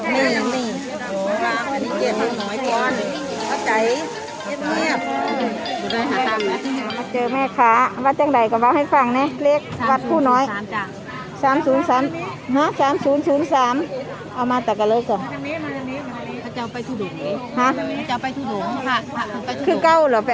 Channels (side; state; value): both; identical; correlation 1.00